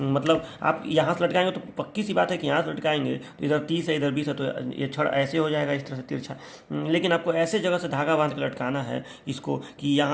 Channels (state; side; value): identical; both; correlation 1.00